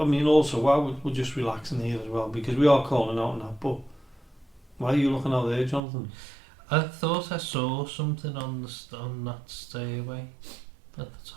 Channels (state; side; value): drops out; left; at 5.8 s